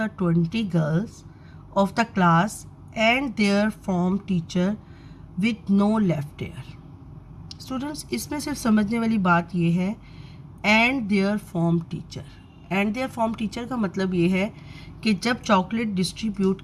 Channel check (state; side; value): identical; both; correlation 1.00